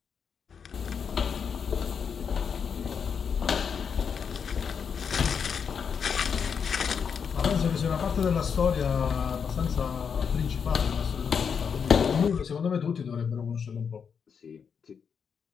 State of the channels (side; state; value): right; quieter; 6.7 dB